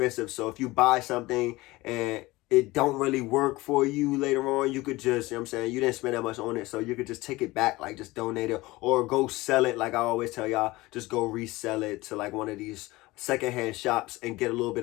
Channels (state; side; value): quieter; right; 20.2 dB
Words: So if you buy something and it don't really work for you later on, you could just, you know what I'm saying, you didn't spend that much on it, so you could just take it back, like just donate it or go sell it. Like I always tell y'all, just go resell it to like one of these secondhand shops and get a little bit